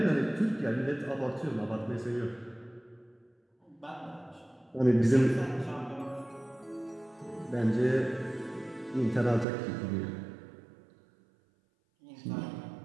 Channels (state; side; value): drops out; left; at 9.5 s